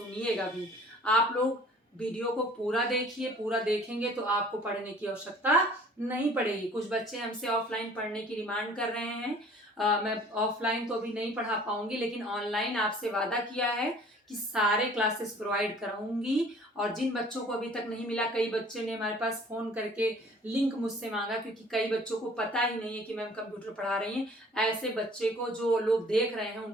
भी। आप लोग वीडियो को पूरा देखिए, पूरा देखेंगे तो आपको पढ़ने की आवश्यकता नहीं पड़ेगी। कुछ बच्चे हमसे ऑफलाइन पढ़ने की डिमांड कर रहे हैं, मैं ऑफलाइन तो अभी नहीं पढ़ा पाऊंगी, लेकिन ऑनलाइन आपसे वादा किया है कि सारे क्लासेस प्रोवाइड कराऊंगी। और जिन बच्चों को अभी तक नहीं मिला, कई बच्चे ने हमारे पास फोन करके लिंक मुझसे मांगा, क्योंकि कई बच्चों को पता ही नहीं है कि मैम कंप्यूटर पढ़ा रही हैं। ऐसे बच्चे को, जो लोग देख रहे हैं,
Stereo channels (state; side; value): normal; both; correlation 0.51